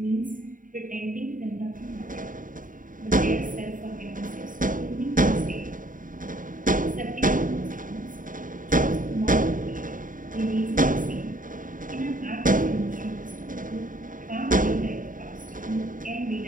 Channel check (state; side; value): late; left; 0.39 ms